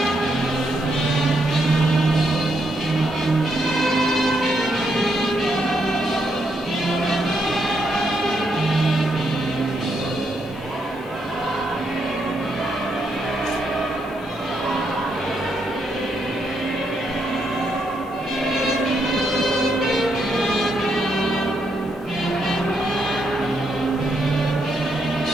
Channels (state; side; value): normal; both; correlation 0.78